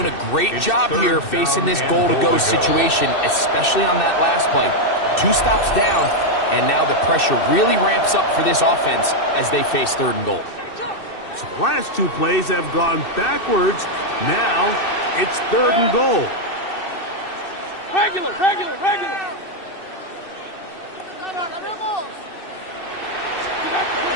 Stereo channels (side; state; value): right; late; 2.6 ms